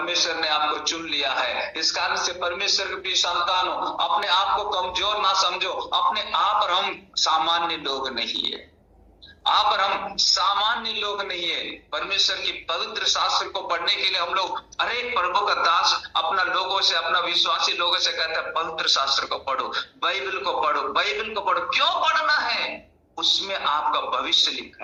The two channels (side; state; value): both; identical; correlation 1.00